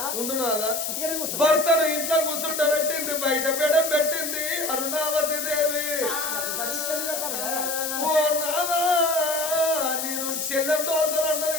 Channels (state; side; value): noise; left; hiss, 3 dB below the sound